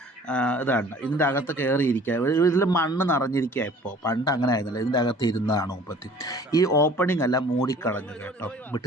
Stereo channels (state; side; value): normal; both; correlation 0.50